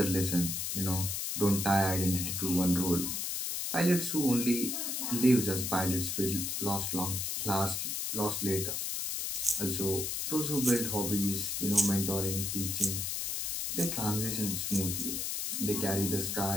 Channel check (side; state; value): left; noise; hiss, 2 dB below the sound